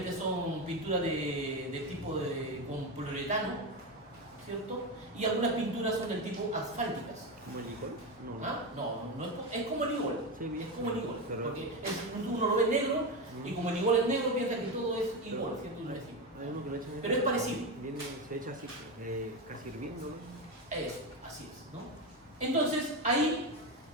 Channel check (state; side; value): normal; both; correlation 0.15